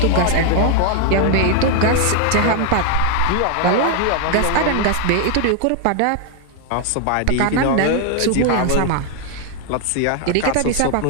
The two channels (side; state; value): both; different; correlation 0.00